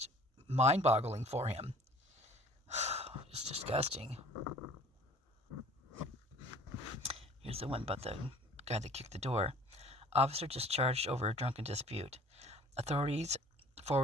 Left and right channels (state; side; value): normal; both; correlation 0.50